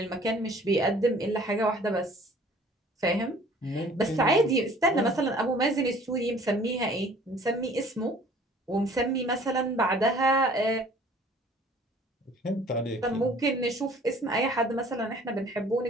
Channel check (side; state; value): both; normal; correlation 0.52